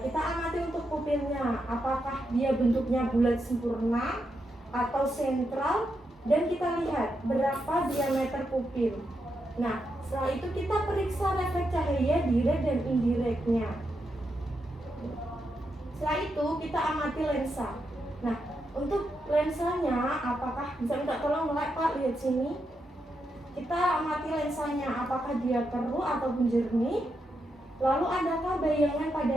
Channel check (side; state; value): both; normal; correlation 0.84